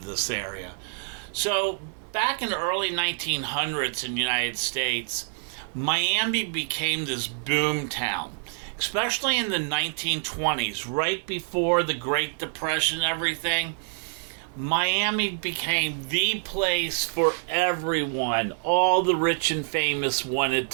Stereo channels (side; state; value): left; silent; digital silence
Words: this area. So back in the early 1900s in the United States, Miami became this boom town, especially in the 1920s, right before the Great Depression and everything. Miami became the place for everyone. All the rich and famous wanted